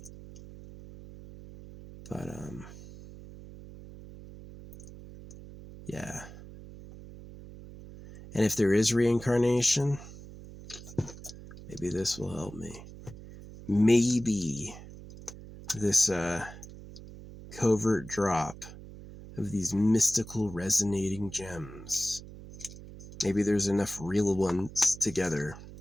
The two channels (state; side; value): noise; right; hum, 15 dB below the sound